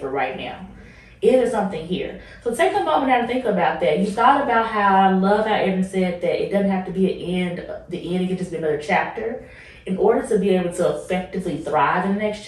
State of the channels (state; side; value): identical; both; correlation 1.00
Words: for right now? Is there something here? So take a moment now to think about that. You thought about how I love how Adrian said that it doesn't have to be an end, the end, it can just be another chapter. In order to be able to effectively thrive in the next